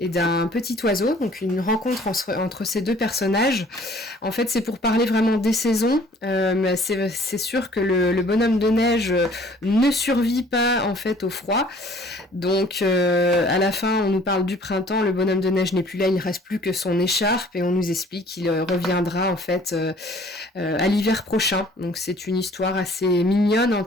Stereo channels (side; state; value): both; normal; correlation 0.54